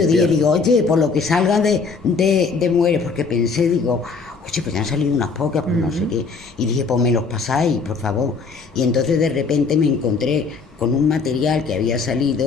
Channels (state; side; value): quieter; right; 4.7 dB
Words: digo, oye, por lo que salga de mujeres, porque pensé, digo, oye, pues ya han salido unas pocas, pues no sé qué. Y dije, pues me los pasáis, por favor. Y entonces de repente me encontré con un material que había